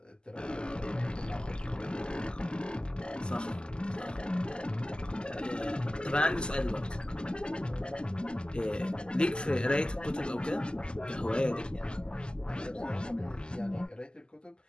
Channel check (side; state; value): right; late; 0.047 ms